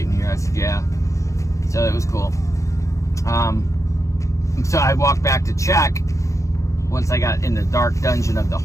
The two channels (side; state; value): right; late; 0.15 ms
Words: in here. I said, yeah. So it was cool. So I walked back to check once I got in the dark dungeon of the